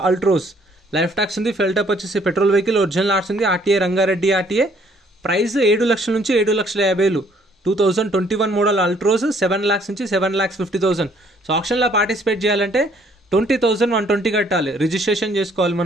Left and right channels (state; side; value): normal; both; correlation 0.63